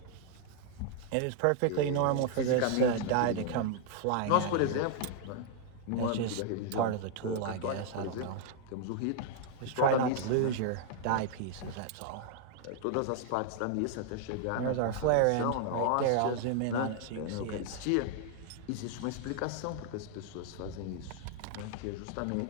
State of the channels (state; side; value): different; both; correlation 0.00